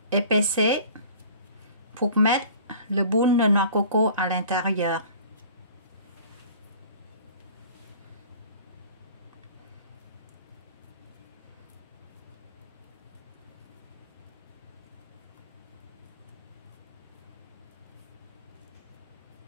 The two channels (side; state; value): both; inverted; correlation -0.46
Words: Épaissez pour mettre le boule de noix de coco à l'intérieur.